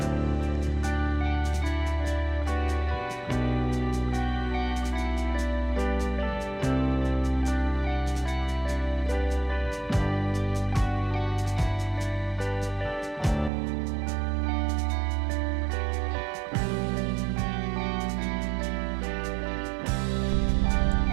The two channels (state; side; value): drops out; left; at 13.5 s